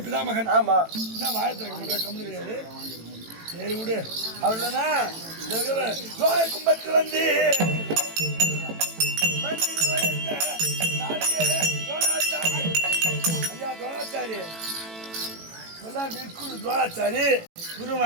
பிதாமகன். ஆமா என்ன வாயத்திறக்க மாட்டேன், கம்மனு கிடையாது. சரி விடு. அவ்வளோனா கும்பத்தில் வந்து ஐயா துரோணாச்சாரி துரோணாச்சாரி குரு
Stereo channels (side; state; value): left; late; 18 ms